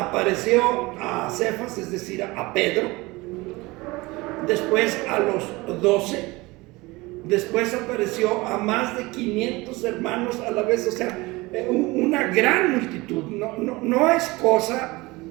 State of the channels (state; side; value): quieter; left; 22.3 dB